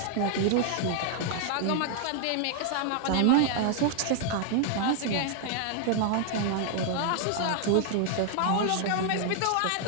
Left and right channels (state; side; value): different; both; correlation 0.00